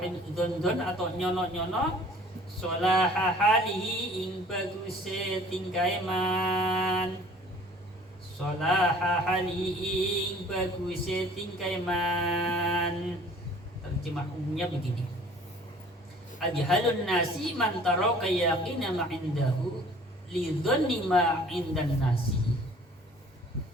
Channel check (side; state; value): both; normal; correlation 0.51